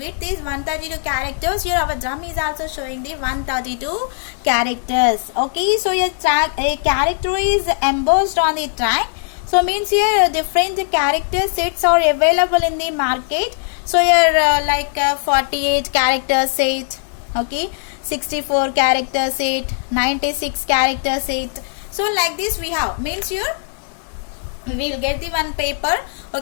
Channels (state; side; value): silent; right; 61 dB below the other